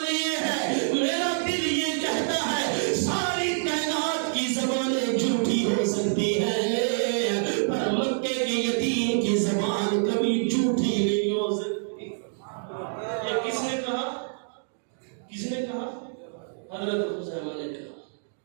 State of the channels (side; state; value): left; silent; digital silence